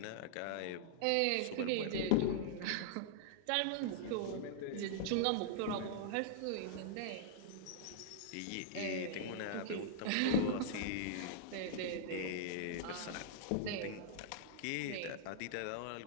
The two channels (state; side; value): different; both; correlation -0.01